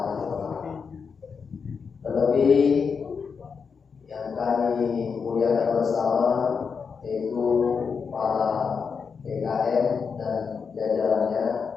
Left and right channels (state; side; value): quieter; right; 5.8 dB